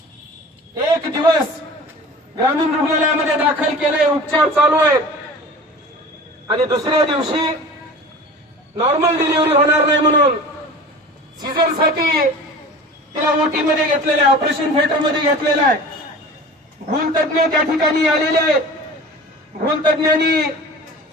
1 दिवस ग्रामीण रुग्णालयामध्ये दाखल केलंय, उपचार चालू आहेत आणि दुसऱ्या दिवशी नॉर्मल डिलिव्हरी होणार नाही म्हणून सीझरसाठी तिला ओटी मध्ये घेतलेलं आहे, ऑपरेशन थिएटर मध्ये घेतलेलं आहे. भूलतज्ञ त्या ठिकाणी आलेले आहेत. भूलतज्ञांनी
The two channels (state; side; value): normal; both; correlation 0.39